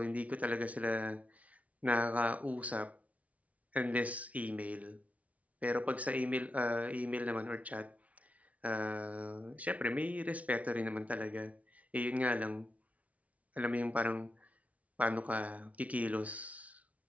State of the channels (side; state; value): left; late; 0.068 ms